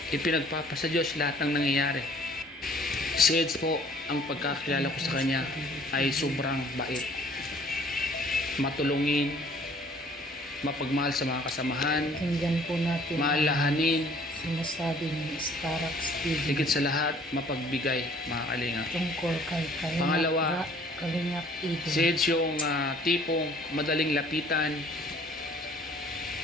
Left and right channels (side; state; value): both; normal; correlation 0.55